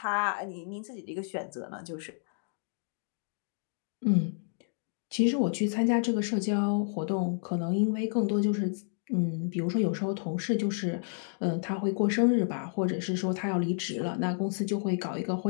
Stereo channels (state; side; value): silent; right; digital silence